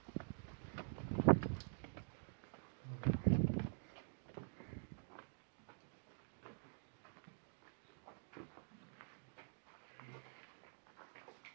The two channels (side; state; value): left; silent; digital silence